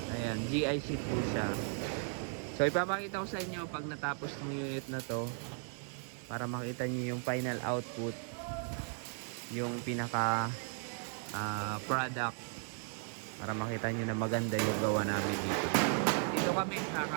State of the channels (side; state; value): left; silent; 54 dB below the other